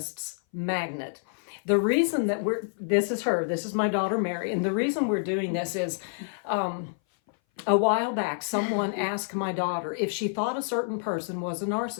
Magnet. The reason that this is my daughter, Mary. And the reason we're doing this is a while back, someone asked my daughter if she thought a certain person was a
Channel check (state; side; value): silent; right; 58 dB below the other